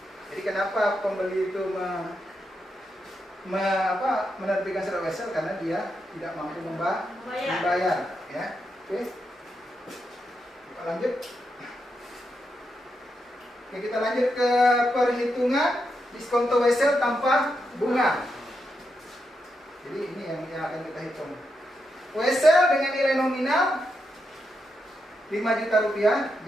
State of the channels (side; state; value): both; normal; correlation 0.84